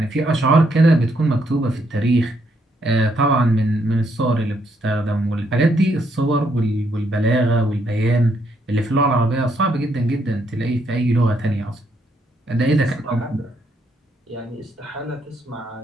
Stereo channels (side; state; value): both; normal; correlation 0.74